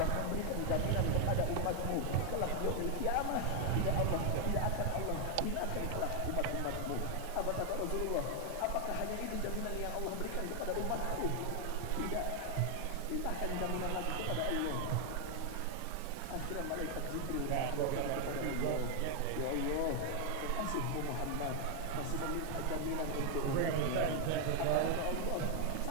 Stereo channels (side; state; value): both; different; correlation 0.00